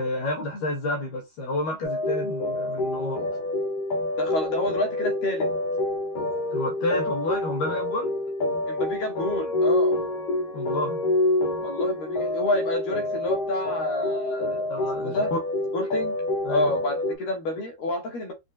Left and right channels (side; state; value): right; late; 13 ms